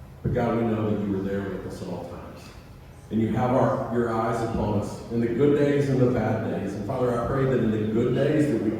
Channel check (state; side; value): identical; both; correlation 1.00